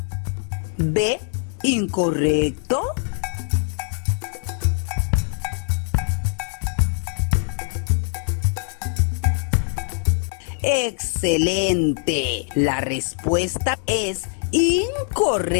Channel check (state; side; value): silent; right; digital silence